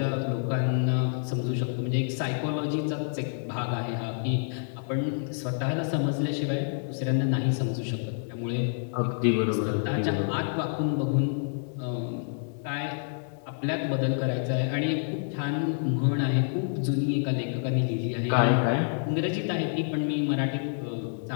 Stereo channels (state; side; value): silent; right; digital silence